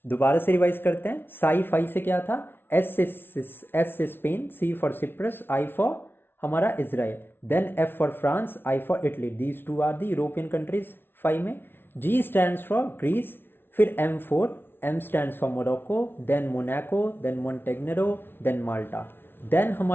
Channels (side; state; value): right; late; 0.11 ms